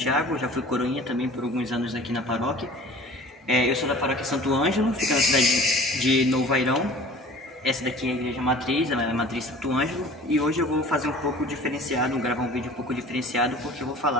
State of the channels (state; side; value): normal; both; correlation 0.45